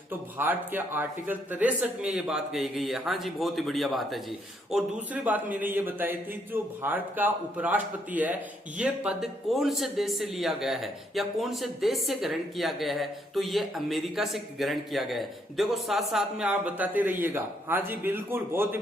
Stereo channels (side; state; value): both; normal; correlation 0.73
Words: तो भारत के आर्टिकल 63 में ये बात कही गई है। हाँ जी, बहुत ही बढ़िया बात है जी। और दूसरी बात मैंने ये बताई थी, जो भारत का उपराष्ट्रपति है ये पद कौन से देश से लिया गया है या कौन से देश से ग्रहण किया गया है, तो ये अमेरिका से ग्रहण किया गया है। देखो साथ साथ में आप बताते रहिएगा। हाँ जी बिल्कुल, बहुत ही